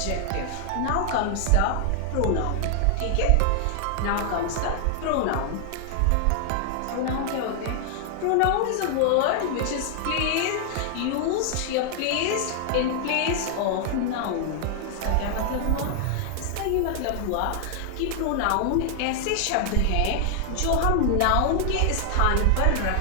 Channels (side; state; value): both; different; correlation 0.00